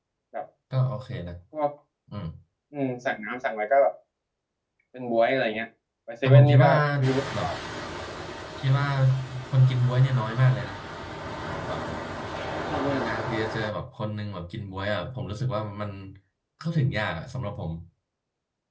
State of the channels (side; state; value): both; identical; correlation 1.00